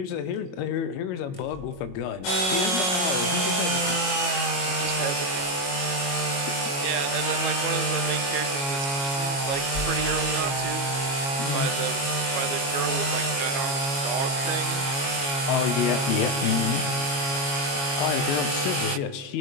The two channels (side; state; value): right; late; 22 ms